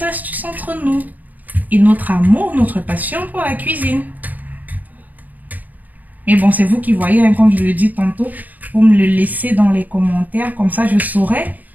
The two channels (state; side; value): late; left; 0.083 ms